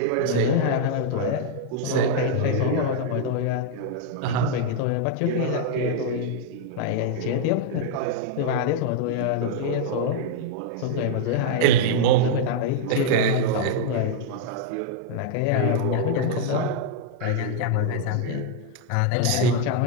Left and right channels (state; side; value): different; both; correlation 0.00